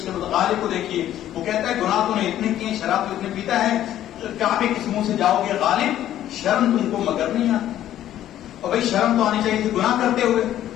غالب کو دیکھیے، وہ کہتا ہے گناہ تو نے اتنے کیے، شراب تو اتنے پیتا ہے، کعبے کے منہ سے جاؤ گے غالب، شرم تم کو مگر نہیں آتی۔ اور بھائی شرم تو آنی چاہیے تھی، گناہ کرتے ہوئے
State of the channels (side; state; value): right; quieter; 12.1 dB